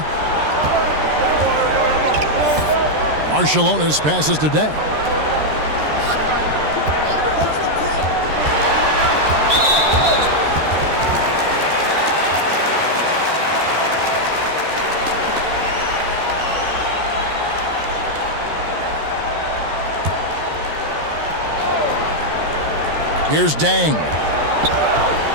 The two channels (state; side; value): late; left; 13 ms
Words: Marciulionis passes to Day. Here's Dang.